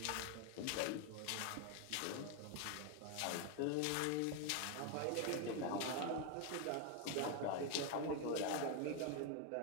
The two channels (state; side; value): different; both; correlation 0.01